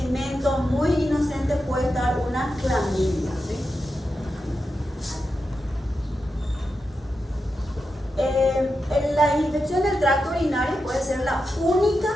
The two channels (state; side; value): normal; both; correlation 0.89